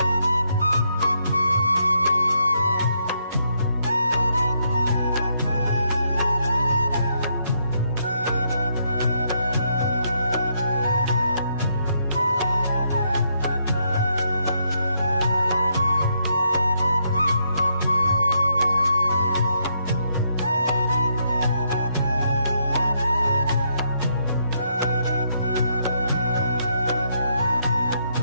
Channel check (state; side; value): inverted; both; correlation -0.75